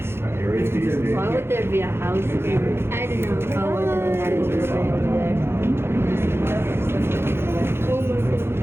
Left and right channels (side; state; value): left; late; 0.12 ms